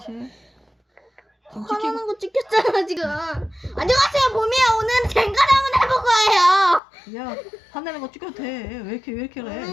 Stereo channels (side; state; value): right; drops out; at 6.8 s